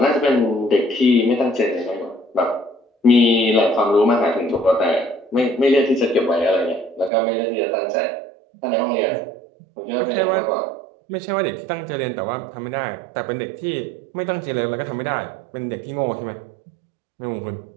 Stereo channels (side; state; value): left; drops out; at 7.1 s